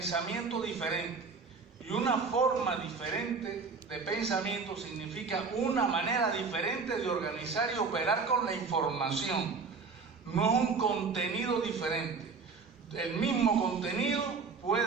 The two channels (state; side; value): quieter; left; 4.9 dB